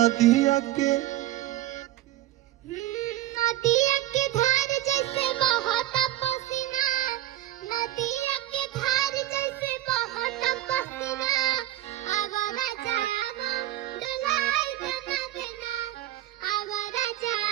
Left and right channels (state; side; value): quieter; left; 14.5 dB